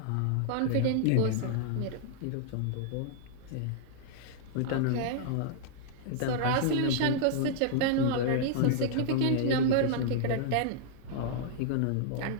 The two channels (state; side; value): different; both; correlation -0.01